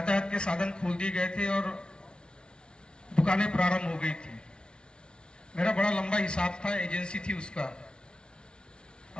के साधन खोल दिए गए थे और दुकानें प्रारंभ हो गई थी। मेरा बड़ा लंबा हिसाब था, एजेंसी थी उसका,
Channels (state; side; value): late; right; 0.055 ms